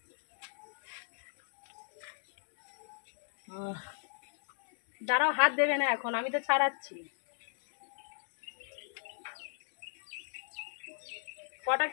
দাঁড়াও, হাত দেবে না এখন, আমি তো ছাড়াচ্ছি। কটা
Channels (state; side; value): silent; right; digital silence